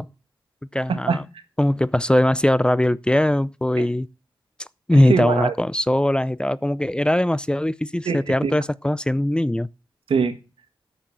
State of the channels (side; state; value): both; normal; correlation 0.93